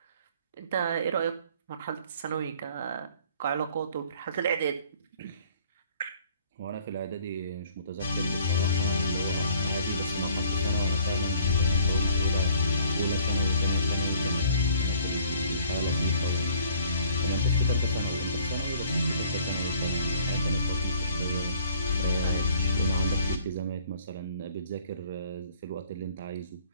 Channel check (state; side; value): inverted; both; correlation -0.56